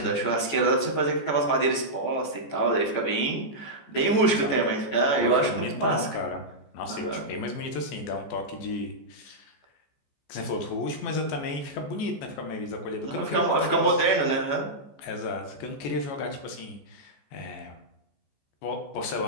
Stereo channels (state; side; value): late; right; 14 ms